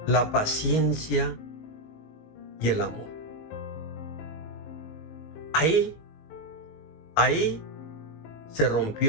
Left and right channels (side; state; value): right; late; 19 ms